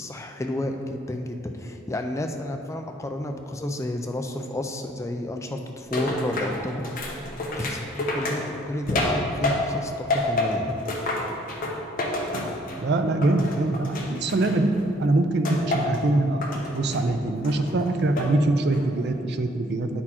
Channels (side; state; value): both; normal; correlation 0.63